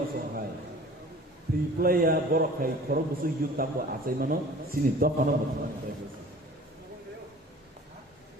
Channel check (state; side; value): normal; both; correlation 0.45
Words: songhai three player borok khai khorok busu yuta ko achai mano sini dokano mutman